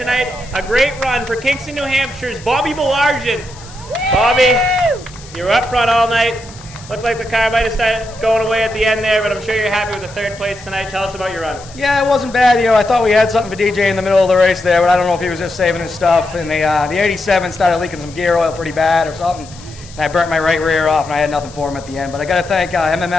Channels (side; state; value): left; noise; hiss, 20 dB below the sound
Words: A great run for Kingston, New Hampshire's Bobby Belargin. Bobby, you were up front all night. Looked like the car might have started going away at the end there, but I'm sure you're happy with the 3rd place tonight. Tell us about your run. Yeah, it wasn't bad. I thought we had something for DJ in the middle of the race there, but I don't know if he was just saving his stuff. And the 87 started leaking some gear oil pretty bad or something. And I burnt my right rear off, and I had nothing for him at the end. But I got to thank